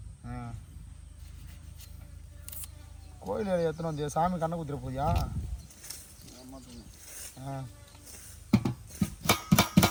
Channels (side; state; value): both; identical; correlation 1.00